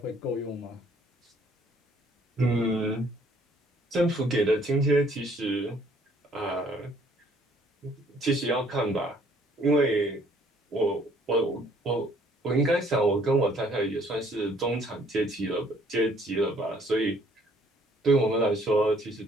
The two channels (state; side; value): normal; both; correlation 0.61